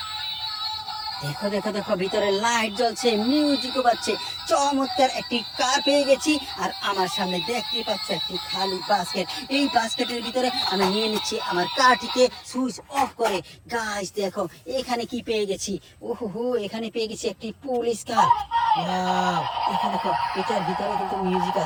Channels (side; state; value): both; identical; correlation 1.00